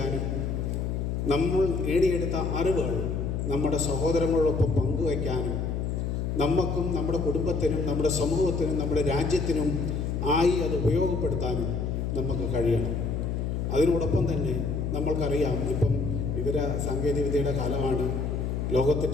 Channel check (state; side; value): noise; left; hum, 1 dB below the sound